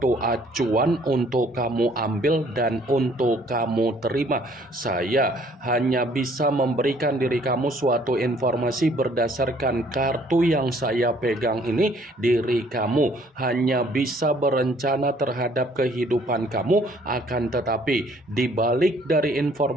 acuan untuk kamu ambil dan untuk kamu terima. Saya hanya bisa memberikan diri kamu suatu informasi berdasarkan kartu yang saya pegang ini. Diri kamu hanya bisa berencana terhadap kehidupan kamu, akan tetapi di balik dari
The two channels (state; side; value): normal; both; correlation 0.60